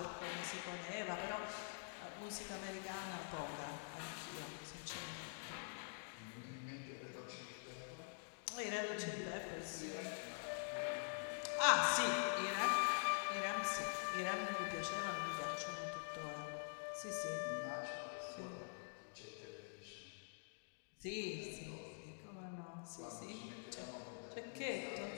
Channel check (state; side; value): silent; right; digital silence